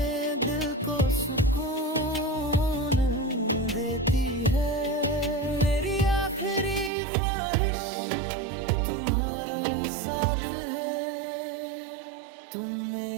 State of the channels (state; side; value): drops out; left; at 6.9 s